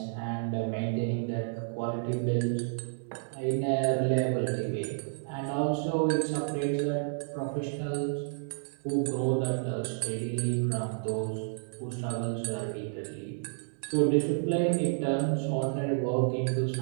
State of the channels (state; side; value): silent; left; digital silence